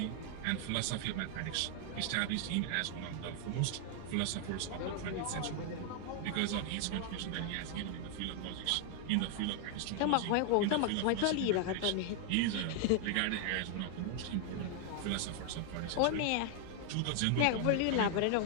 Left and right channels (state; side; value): different; both; correlation 0.00